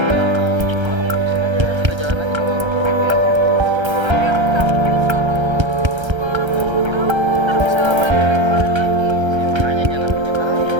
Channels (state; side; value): late; left; 1.3 ms